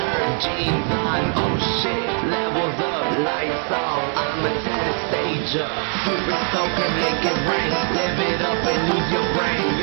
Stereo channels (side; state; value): left; quieter; 39.4 dB